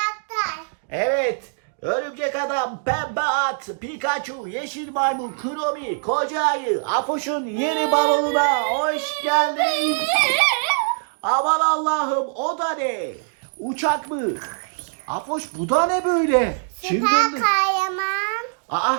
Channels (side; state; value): left; silent; digital silence